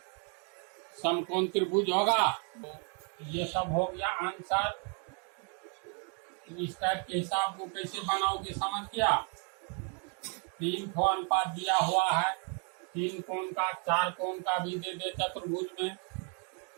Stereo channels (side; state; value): left; quieter; 39.8 dB